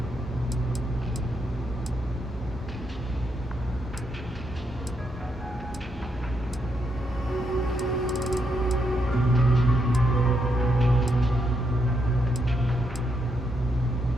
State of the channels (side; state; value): both; normal; correlation 0.79